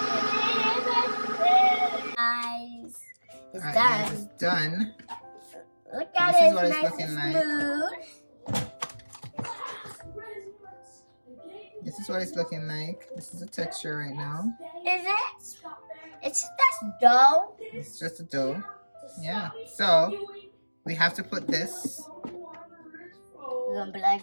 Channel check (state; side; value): inverted; both; correlation -1.00